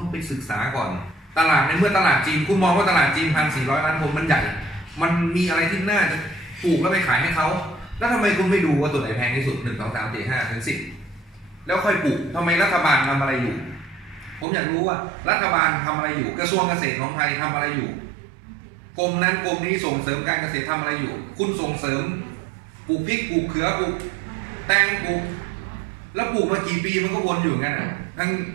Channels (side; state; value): left; drops out; at 14.5 s